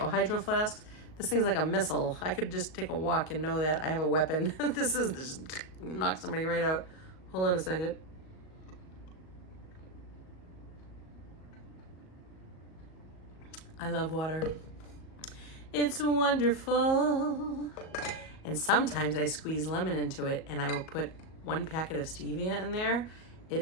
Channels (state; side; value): late; right; 38 ms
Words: hydro flasks. This thing's like a missile. I could just take a walk and know that I have a weapon. This just knock somebody right out. Hold on a second. I love water. It's wonderful. And sometimes I squeeze lemon into it and I will put 1 packet of stevia in there.